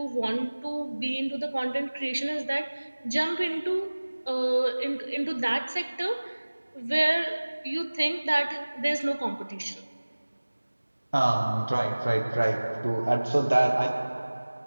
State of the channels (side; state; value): both; inverted; correlation -1.00